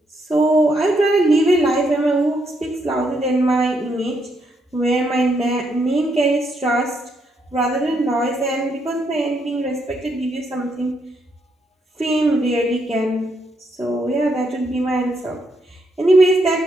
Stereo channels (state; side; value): normal; both; correlation 0.76